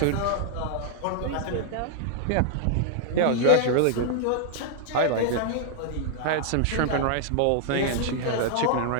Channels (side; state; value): both; different; correlation -0.01